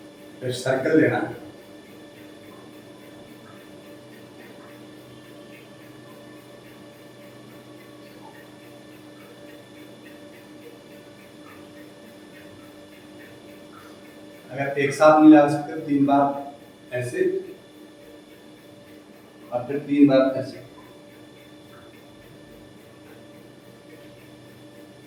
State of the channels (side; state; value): both; identical; correlation 1.00